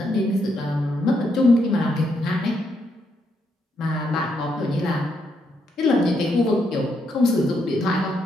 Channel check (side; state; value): both; normal; correlation 0.77